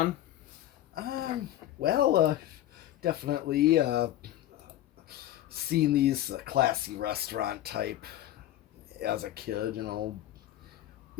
Well, definitely seen these classy restaurant type as a kid, you know.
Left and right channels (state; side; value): quieter; right; 13.2 dB